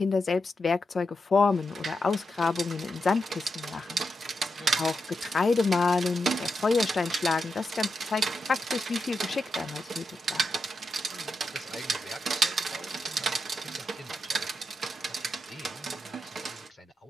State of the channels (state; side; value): normal; both; correlation 0.87